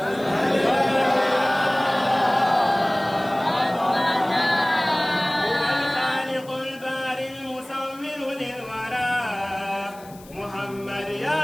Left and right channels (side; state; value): left; noise; hiss, 23 dB below the sound